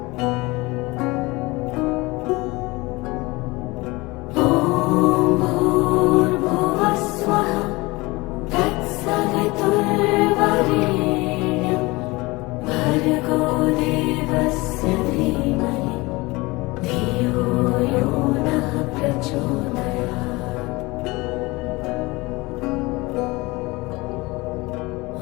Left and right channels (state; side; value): quieter; right; 22.9 dB